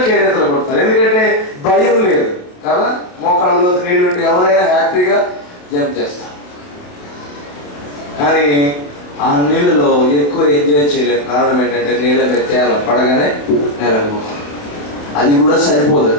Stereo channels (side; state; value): right; late; 28 ms